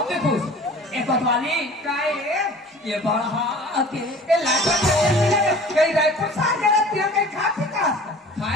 भी खुश एक कोतवाली काय ये बढ़ा के ये लाज कहीं रायपुर सार गया तिया कहीं खा पी का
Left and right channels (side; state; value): both; normal; correlation 0.44